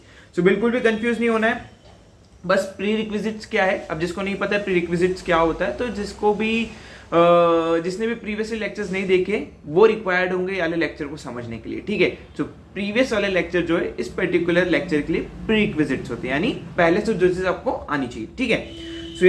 सो बिल्कुल भी कंफ्यूज नहीं होना है। बस प्री रिक्विजिट्स क्या है, अब जिसको नहीं पता है प्री रिक्विजिट्स क्या होता है, तो जिसने भी प्रीवियस लेक्चर्स नहीं देखे वो रिक्वायर्ड होंगे वाले लेक्चर को समझने के लिए। ठीक है, तो प्रीवियस वाले लेक्चर जो है इस पर्टिकुलर लेक्चर के लिए प्री रिक्विजिट्स होते हैं, यानी पहले से जो चीज आपको आनी चाहिए। ठीक है, सो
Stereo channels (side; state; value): both; identical; correlation 1.00